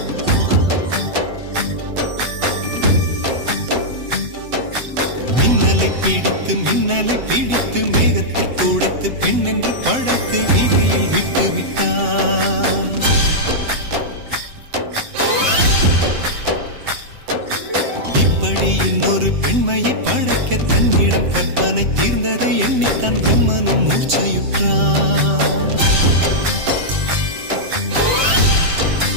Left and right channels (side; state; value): left; late; 7.8 ms